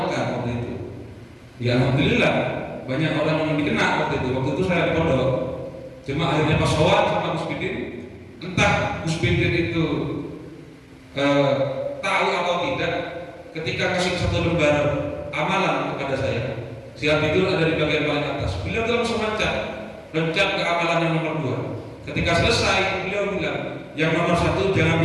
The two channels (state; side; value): identical; both; correlation 1.00